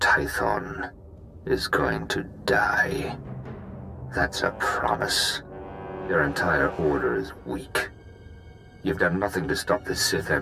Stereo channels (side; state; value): both; identical; correlation 1.00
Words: is going to die. That's a promise. Your entire order is weak. You've done nothing to stop the Sith